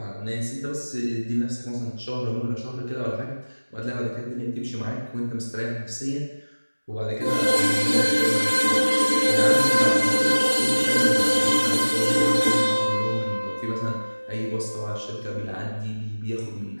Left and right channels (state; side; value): inverted; both; correlation -1.00